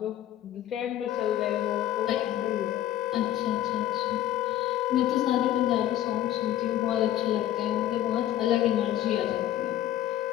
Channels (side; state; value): right; quieter; 12.7 dB